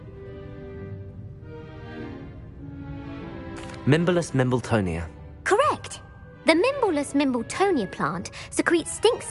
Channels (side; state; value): both; identical; correlation 1.00